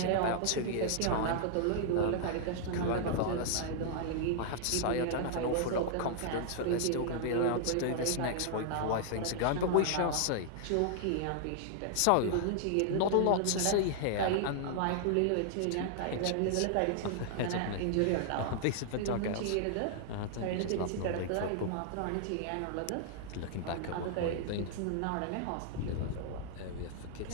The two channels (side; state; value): both; different; correlation -0.01